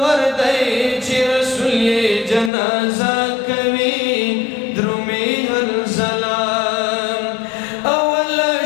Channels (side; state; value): right; drops out; at 2.5 s